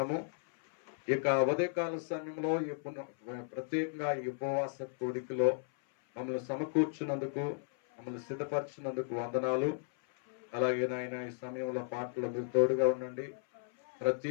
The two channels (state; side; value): silent; right; 55 dB below the other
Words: ఇక ఉదయకాల సమయంలో ప్రత్యేకంగా ఈ ఉపవాస కోడికలో మమ్మల్ని సమకూర్చున్నందుకు, మమ్మల్ని సిద్ధపరిచినందుకు వందనాలు. అలాగే నాయన ఈ సమయంలో పాటలు మీరు తోడుగా ఉండండి.